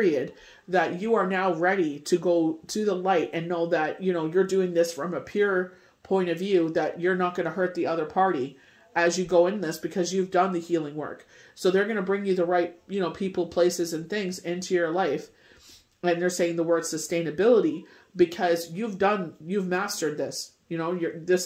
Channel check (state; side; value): identical; both; correlation 1.00